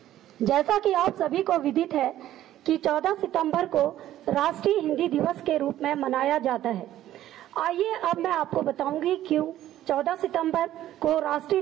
जैसा कि आप सभी को विदित है कि 14 सितंबर को राष्ट्रीय हिंदी दिवस के रूप में मनाया जाता है। आइए अब मैं आपको बताऊंगी क्यों 14 सितंबर को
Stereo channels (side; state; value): left; quieter; 13.1 dB